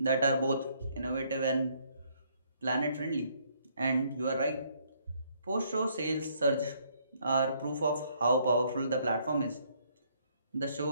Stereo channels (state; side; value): inverted; both; correlation -0.68